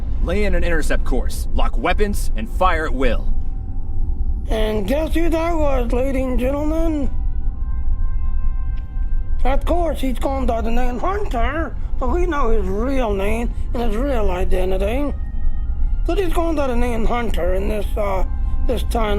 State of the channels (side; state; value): both; identical; correlation 1.00